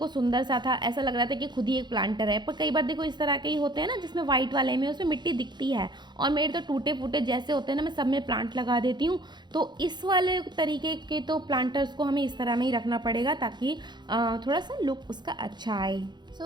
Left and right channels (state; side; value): late; left; 0.21 ms